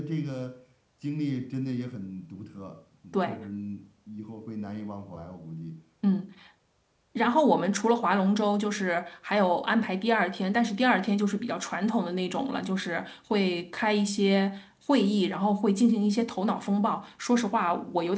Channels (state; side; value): identical; both; correlation 1.00